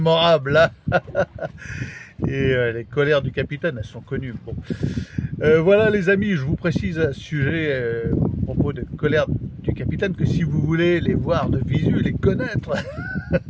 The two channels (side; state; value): both; identical; correlation 1.00